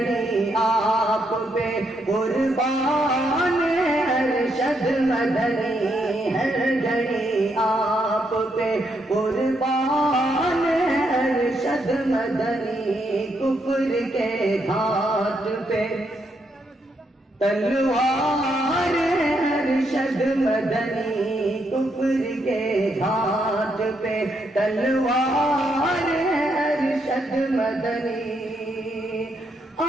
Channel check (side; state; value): both; normal; correlation 0.78